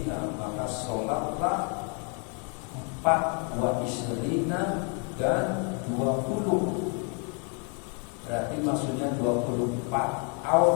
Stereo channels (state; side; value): quieter; right; 37.6 dB